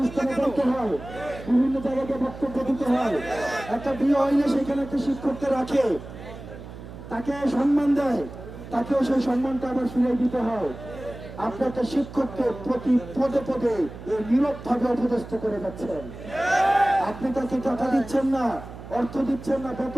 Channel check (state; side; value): noise; right; hum, 14 dB below the sound